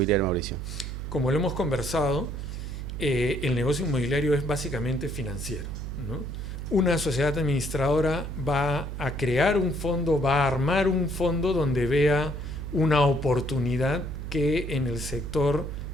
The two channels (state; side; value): noise; right; hum, 6 dB below the sound